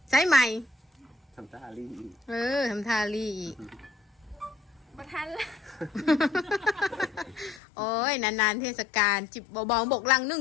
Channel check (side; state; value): right; drops out; at 7.6 s